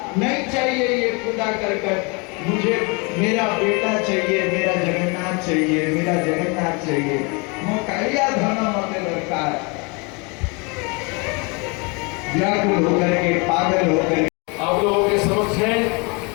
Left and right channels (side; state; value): right; quieter; 30.6 dB